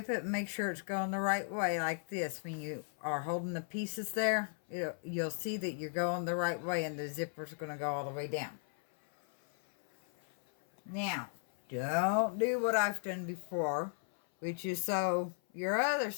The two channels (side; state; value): right; silent; 54 dB below the other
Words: it, make sure it's going the right way like this. When you are holding the pieces there, you'll see that you're going the right way, and the zipper's gonna go all the way down. Now, don't do what I've done before, which is sew your other